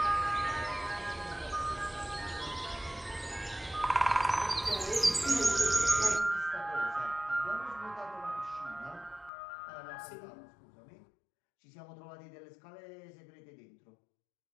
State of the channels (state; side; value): drops out; right; at 9.3 s